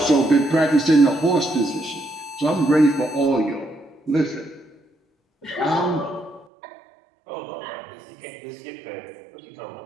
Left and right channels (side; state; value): left; drops out; at 6.5 s